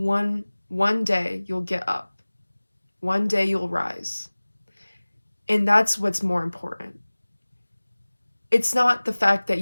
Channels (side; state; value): both; inverted; correlation -1.00